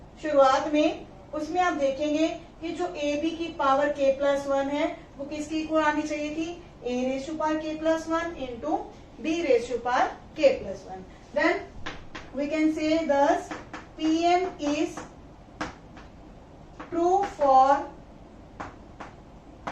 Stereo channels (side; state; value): both; identical; correlation 1.00